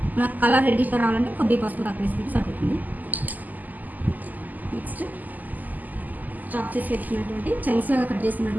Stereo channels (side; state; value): left; late; 0.082 ms